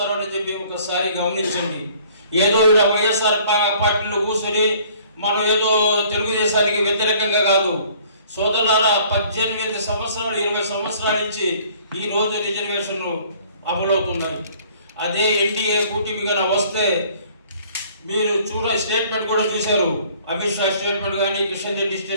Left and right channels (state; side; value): inverted; both; correlation -0.56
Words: అని చెప్పి ఒకసారి గమనించండి. ఏదో ఇలా వైఎస్ఆర్ పార్టీలో కూర్చొని మనం ఏదో తెలుగుదేశానికి వ్యతిరేకంగా కాదు సోదరులారా. 18 సంవత్సరాలు 20 సంవత్సరాల నుంచి ఈ రోజు రిజర్వేషన్లు అమలవుతున్నాయి. అదే ఎన్డీఏ కూటమిగా వస్తే మీరు స్టేట్మెంట్ కూడా చూశారు. అమిత్ షా స్టేట్మెంట్ కానీ, కిషన్ రెడ్డి